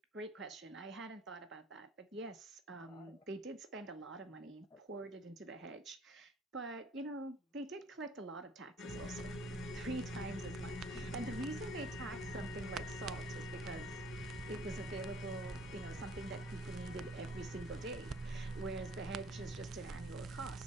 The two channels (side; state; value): both; normal; correlation 0.56